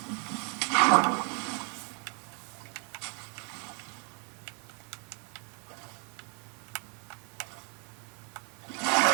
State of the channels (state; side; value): quieter; left; 36.7 dB